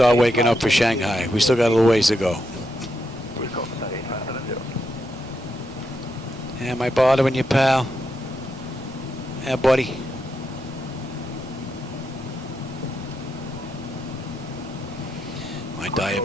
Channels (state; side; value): normal; both; correlation 0.82